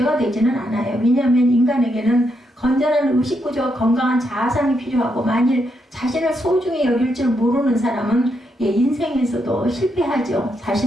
되지는 않아요. 왜냐하면 인간에게는 건전한 의식구조와 건강한 자아상이 필요하고 만일 자신을 소중히 여길 줄 모르는 사람은 인생에서도 실패하죠.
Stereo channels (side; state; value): both; normal; correlation 0.80